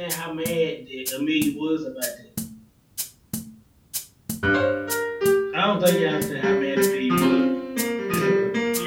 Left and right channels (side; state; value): both; identical; correlation 1.00